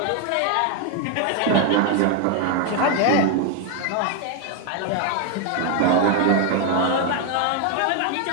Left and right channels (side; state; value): both; different; correlation 0.01